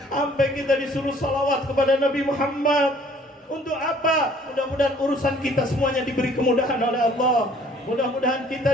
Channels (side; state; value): both; normal; correlation 0.57